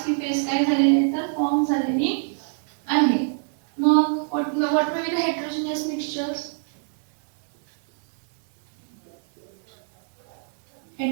ही फेज काय झालेली आहे? तर फॉर्म झालेली आहे. मग what may be the heterogeneous mixtures?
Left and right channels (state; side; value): silent; left; digital silence